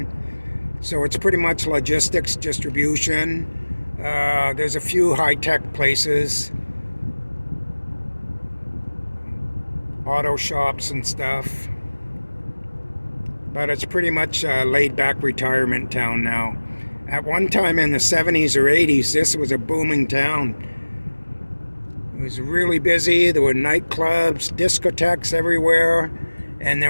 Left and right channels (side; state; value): both; inverted; correlation -1.00